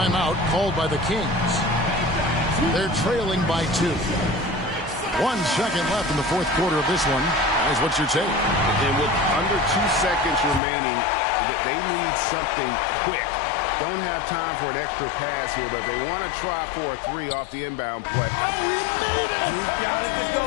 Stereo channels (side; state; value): right; drops out; at 10.6 s